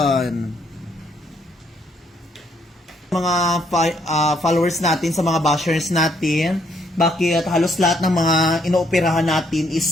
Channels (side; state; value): both; normal; correlation 0.70